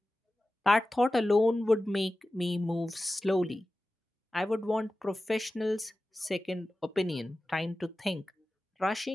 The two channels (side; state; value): both; normal; correlation 0.95